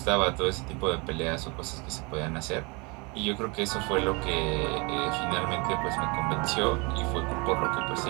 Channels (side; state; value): left; quieter; 29.1 dB